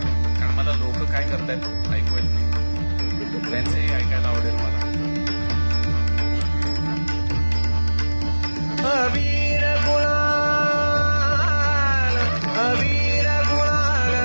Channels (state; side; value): inverted; both; correlation -1.00